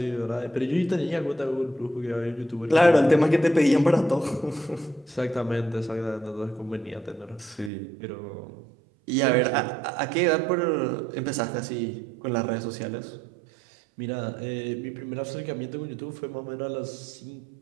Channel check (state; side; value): drops out; left; at 7.7 s